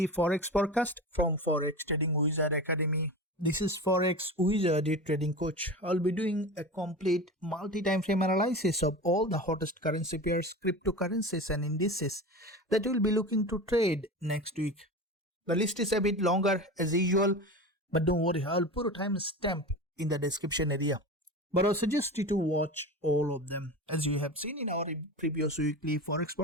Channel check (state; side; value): normal; both; correlation 0.29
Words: Forex forecast from Forex Trading Wizard Academy. This is Forex Wizard Trading Coach. I'll be doing a complete multi-time frame analysis of all the hottest currency pairs, cryptocurrencies and indices that we'll be looking to trade next week. The list is a bit longer as usual, but don't worry, I'll put a timestamp in the description area. But I suggest you to watch all of them. As you have seen in our previous weekly Forex